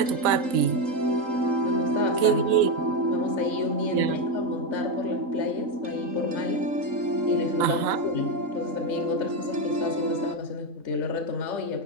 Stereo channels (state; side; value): late; left; 4.1 ms